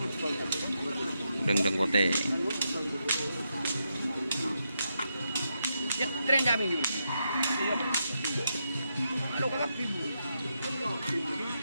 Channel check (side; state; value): both; inverted; correlation -0.83